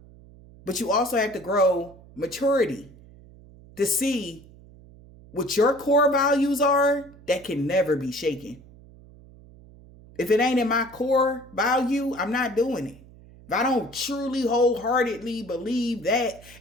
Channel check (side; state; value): right; noise; hum, 22 dB below the sound